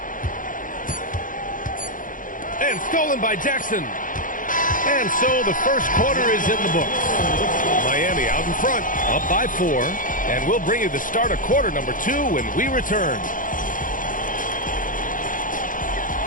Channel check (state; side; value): late; right; 0.39 ms